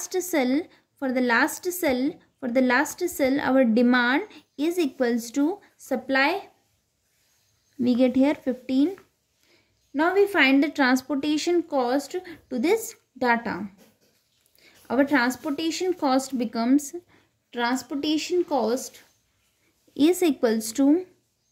cell, our demand is equals to supply. We get here 15. Now we find the transportation cost to this data. Our transportation cost is equals to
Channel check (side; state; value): both; identical; correlation 1.00